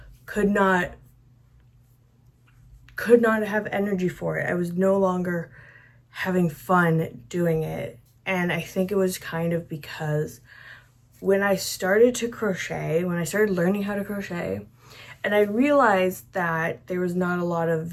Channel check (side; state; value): both; identical; correlation 1.00